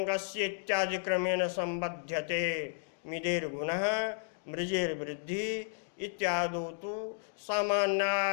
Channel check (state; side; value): silent; right; digital silence